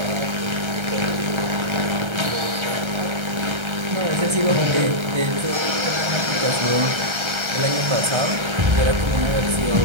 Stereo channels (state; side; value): late; left; 1.3 ms